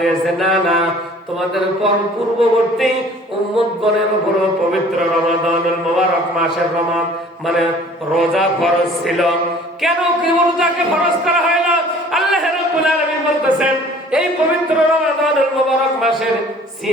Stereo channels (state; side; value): normal; both; correlation 0.50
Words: না না, তোমাদের পূর্ববর্তী উম্মতগণের উপর পবিত্র রমাদানুল মুবারক মাসের মানে রোজা ফরজ ছিল। কেন কি রোজাকে ফরজ করা হয় না? আল্লাহ রাব্বুল আলামিন বলতেছেন, এই পবিত্র রমাদানুল মুবারক মাসের